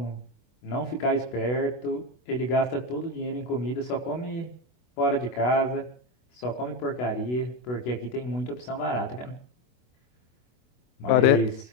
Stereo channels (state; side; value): late; right; 24 ms